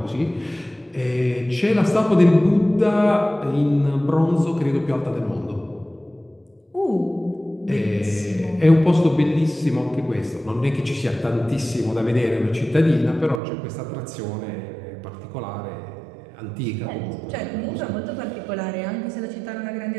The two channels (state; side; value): drops out; left; at 13.4 s